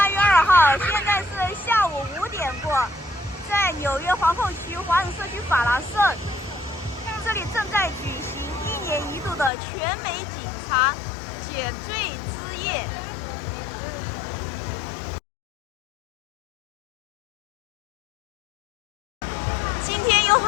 月2号，现在是下午5点过，在纽约皇后区华人社区法拉盛，这里正在举行1年1度的全美警察选罪之夜。今天有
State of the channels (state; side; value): drops out; right; at 9.5 s